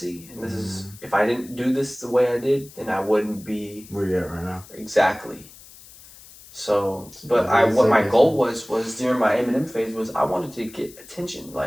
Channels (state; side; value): noise; left; hiss, 21 dB below the sound